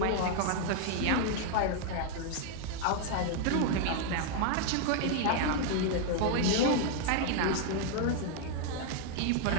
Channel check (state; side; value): different; both; correlation 0.00